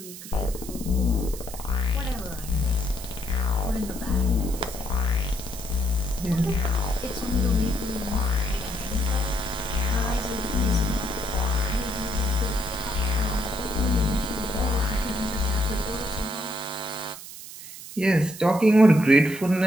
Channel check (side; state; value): right; noise; hiss, 13 dB below the sound